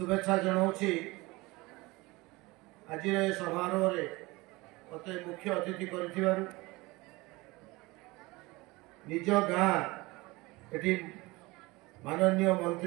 जनाउछि। आज समारोह रे मते मुख्य अतिथि करथिबारु निज गाँ एठी माननीय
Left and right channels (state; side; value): quieter; left; 22.4 dB